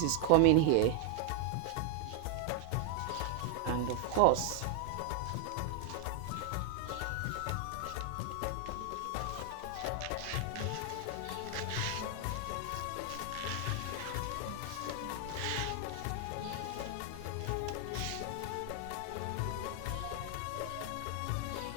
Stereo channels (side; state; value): both; different; correlation 0.00